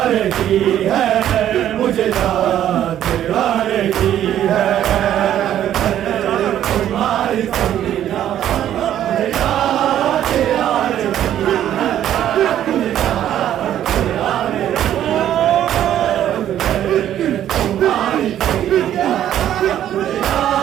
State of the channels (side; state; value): left; quieter; 11.2 dB